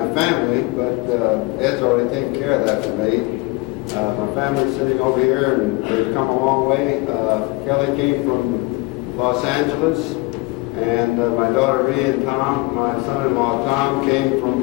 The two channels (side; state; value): right; quieter; 24.5 dB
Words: family, but Ed's already taken care of that for me. My family's sitting over here, and they've come a long way. Kelly came from Los Angeles, and my daughter Rhea and Tom, my son-in-law Tom, came